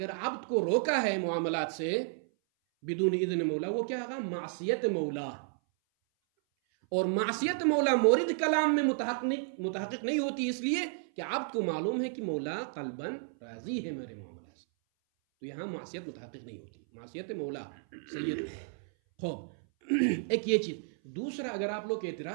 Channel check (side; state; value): left; silent; 56 dB below the other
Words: عبد کو روکا ہے معاملات سے بدون اذن مولا، وہ کیا ہوگا، معصیت مولا، اور معصیت مولا مورد کلام میں متحقق نہیں ہوتی، اس لیے کہ عبد کو معلوم ہے کہ مولا قلباً راضی ہے میرے معاملات سے، تو یہاں معصیت متحقق نہیں ہوتی، معصیت مولا سید۔ خوب ایک یہ چیز، دوسرا اگر آپ لوگ